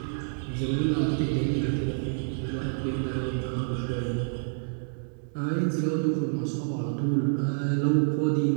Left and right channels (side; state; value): left; silent; digital silence